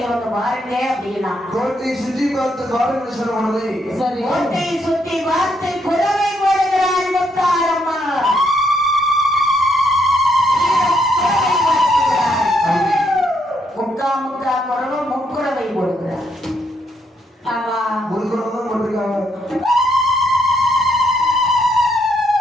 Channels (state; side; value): normal; both; correlation 0.75